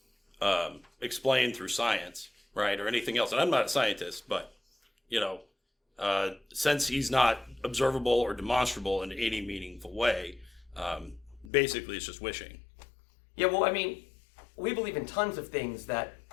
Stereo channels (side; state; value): right; drops out; at 11.5 s